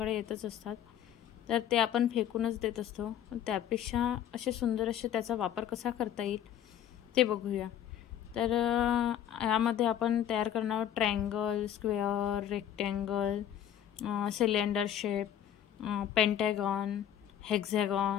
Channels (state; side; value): quieter; right; 10.4 dB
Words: येतच असतात, तर ते आपण फेकूनच देत असतो. त्यापेक्षा असे सुंदर असे त्याचा वापर कसा करता येईल ते बघूया. तर यामध्ये आपण तयार करणार आहोत triangle, square, rectangle, cylinder shape, Pentagon,